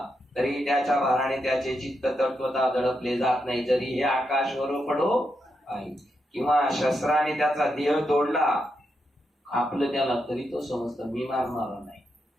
तरी त्याच्या भाराने त्याचे चित्त तत्वता दडपले जात नाही. जरी हे आकाशवर पडो आहे किंवा शस्त्राने त्याचा देह तोडला आपलं त्याला तरी तो समजत मी मारणार नाही.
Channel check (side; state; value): both; normal; correlation 0.83